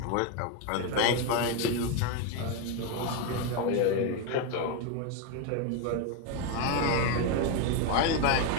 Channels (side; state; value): both; different; correlation 0.02